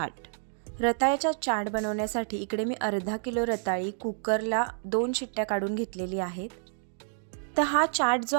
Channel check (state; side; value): silent; left; digital silence